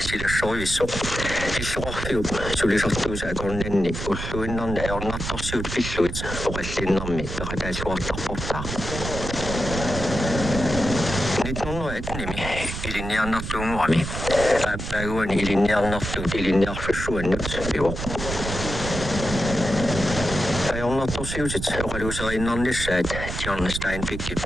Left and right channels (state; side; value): noise; right; rumble, 6 dB below the sound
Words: soivissu. Fisuarfiu suli sattuisa konnenni. Ulluinnan ei onna tossiut fissuit. Oreslinnammi päätä suottaa pottaa. Nyt on etnimi ilinjannattu muami. Päiväni ilinjannattu ilinjahvissuennut pivo. Ei olla tosiusit, oli usein lisää, että Jannestain pikki